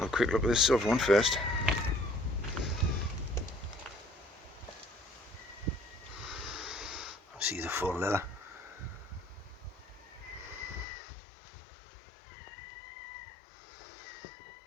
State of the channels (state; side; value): drops out; right; at 10.9 s